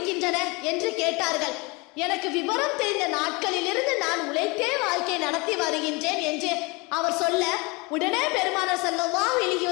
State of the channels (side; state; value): right; quieter; 26.9 dB